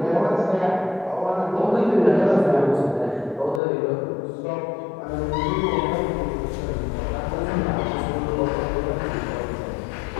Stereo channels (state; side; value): drops out; right; at 3.6 s